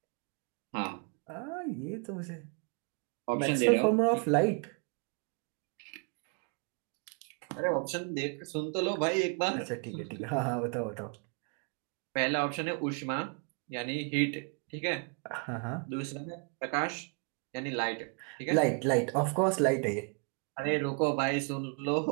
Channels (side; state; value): left; quieter; 38.5 dB